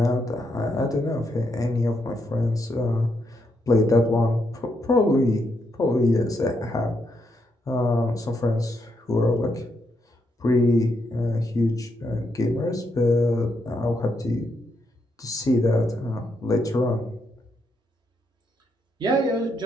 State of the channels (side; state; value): both; normal; correlation 0.79